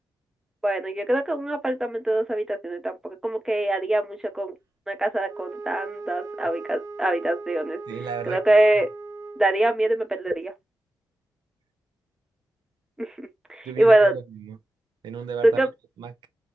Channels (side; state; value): both; normal; correlation 0.93